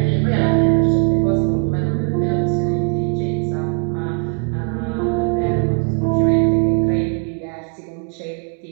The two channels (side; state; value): left; quieter; 34.6 dB